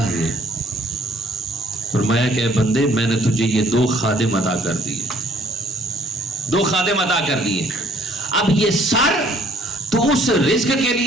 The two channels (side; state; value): both; normal; correlation 0.60